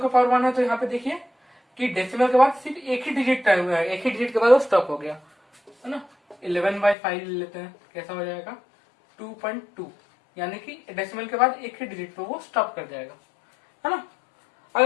पावर 1 है, तो यहाँ पे देखिए कि डेसिमल के बाद सिर्फ एक ही डिजिट के बाद वो स्टॉप हो गया, है ना। 11/5 ले लेते हैं, कैसा हो जाएगा, 2.2, यानी कि डेसिमल के बाद एक ही डिजिट पे वो स्टॉप कर जाएगा, है ना।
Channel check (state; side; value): drops out; right; at 7.0 s